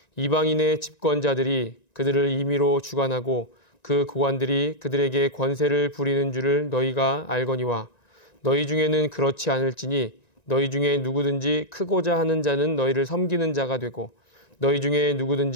이방인의 집권자들이 그들을 임의로 주관하고 그 고관들이 그들에게 권세를 부리는 줄을 너희가 알거니와 너희 중에는 그렇지 않을지니 너희 중에 누구든지 크고자 하는 자는 너희를 섬기는 자가 되고 너희 중에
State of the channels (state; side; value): late; right; 1.9 ms